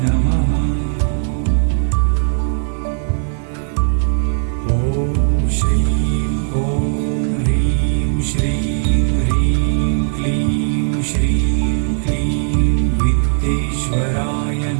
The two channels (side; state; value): left; silent; digital silence